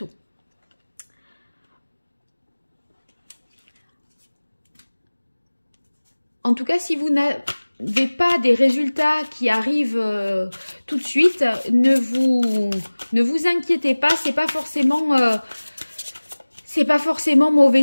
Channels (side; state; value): both; inverted; correlation -1.00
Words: En tout cas, si vous n'avez pas des résultats qui arrivent tout de suite, ne vous inquiétez pas, c'est pas forcément